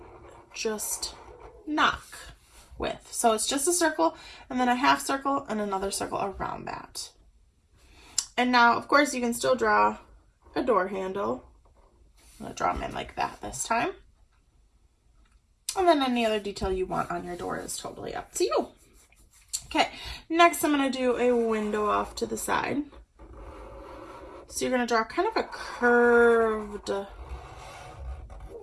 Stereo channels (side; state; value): both; identical; correlation 1.00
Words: just knock with. So it's just a circle and then a half circle and another circle around that. And now, of course, you can still draw a door handle. I'm going to draw them in like that this time. And then any other detail you want on your door is totally up to you. Okay, next I'm going to do a window off to the side. So you're going to draw kind of a curved